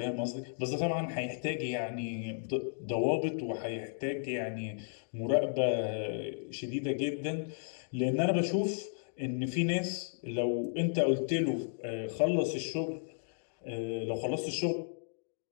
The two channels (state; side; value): silent; right; digital silence